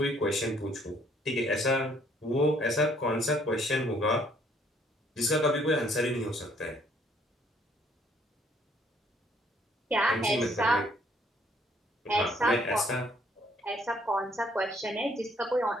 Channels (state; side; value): normal; both; correlation 0.64